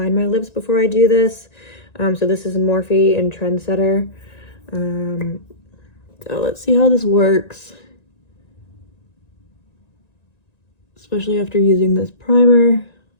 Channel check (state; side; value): late; right; 1.9 ms